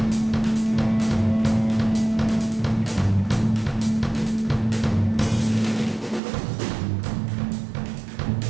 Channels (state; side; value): drops out; left; at 6.2 s